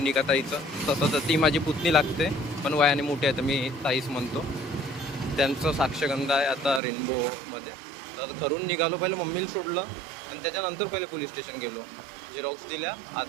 ताईचं. तसं तर ती माझी पुतणी लागते, पण वयाने मोठी आहे तर मी ताईच म्हणतो. त्यांचं साक्षगंध आहे आता रेनबोमध्ये. तर घरून निघालो, पहिले मम्मीला सोडलं आणि त्याच्यानंतर पहिले पोलीस स्टेशन गेलो, झेरॉक्स दिल्या.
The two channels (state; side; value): drops out; left; at 6.8 s